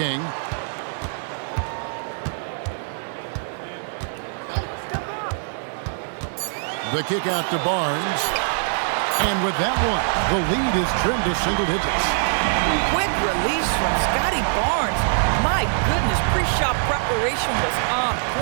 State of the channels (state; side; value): silent; left; digital silence